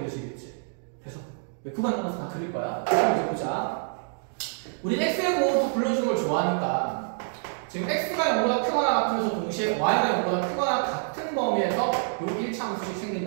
그래서 구간 나눠서 다 그릴 거야. 그럼 이제 보자. 우리 x의 보호도 불러주는 걸 좋아하니까 지금 x가 0보다 크거나 같으면서 동시에 y가 0보다 크거나 같은 범위에서 요 1차 함수식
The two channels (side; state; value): left; silent; digital silence